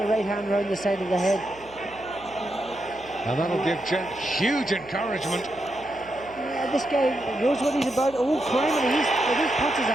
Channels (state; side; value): noise; right; hum, 24 dB below the sound